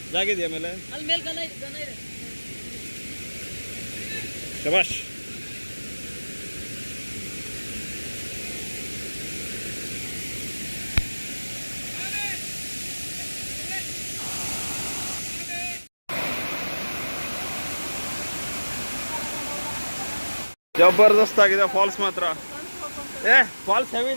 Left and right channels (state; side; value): inverted; both; correlation -1.00